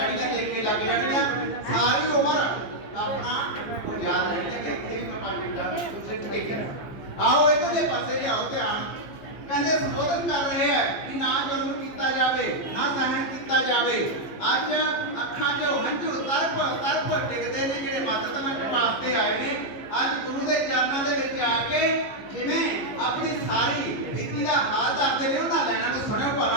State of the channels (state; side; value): late; right; 14 ms